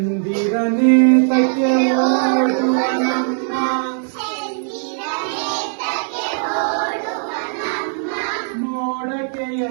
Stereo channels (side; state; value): left; silent; digital silence